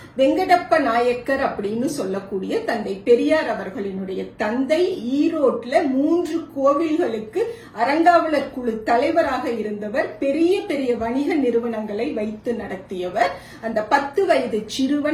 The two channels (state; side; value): identical; both; correlation 1.00